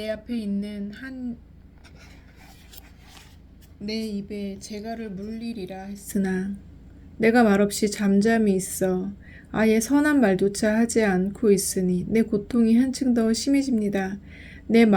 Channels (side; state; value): both; identical; correlation 1.00